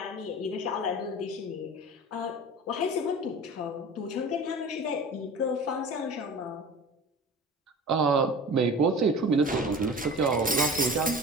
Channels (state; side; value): normal; both; correlation 0.37